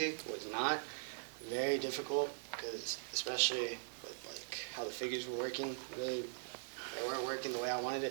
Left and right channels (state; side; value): silent; left; digital silence